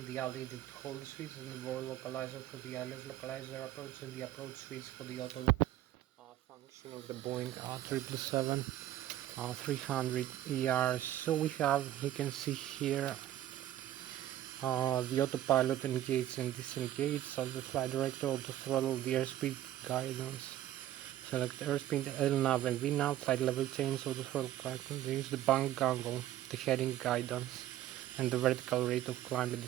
the altitude hold switch, and the roll localizer for the ILS localizer approach, and the approach switch for the auto function of the Boeing 777. 300 ER. So we have, you can see here, the autopilot engage and disengage, so the flight director, auto throttle, the airspeed guidance, select airspeed, LNAV and VNAV, flight level change, auto throttle guidance, the bank angle, the heading guidance, and the vertical rate of climb and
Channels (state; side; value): quieter; left; 13.2 dB